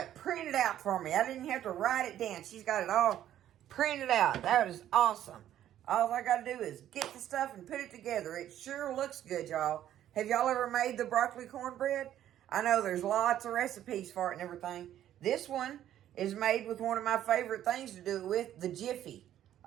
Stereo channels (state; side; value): quieter; left; 11.6 dB